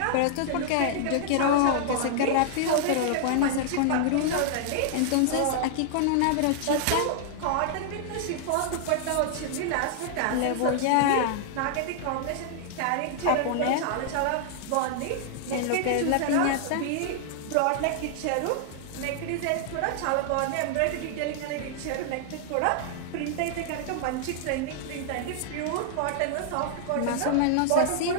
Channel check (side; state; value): both; different; correlation -0.01